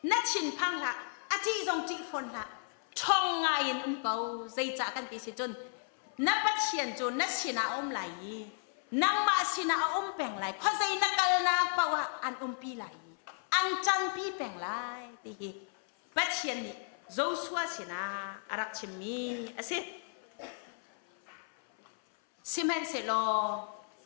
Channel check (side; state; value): right; silent; 55 dB below the other